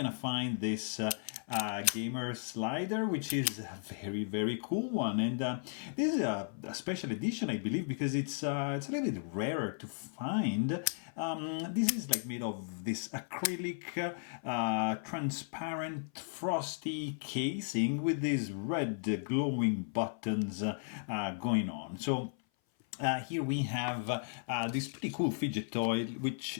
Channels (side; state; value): right; silent; 54 dB below the other